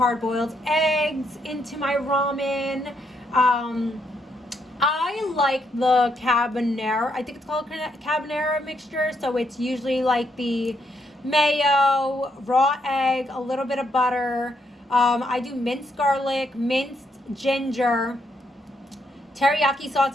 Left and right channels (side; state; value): both; normal; correlation 0.76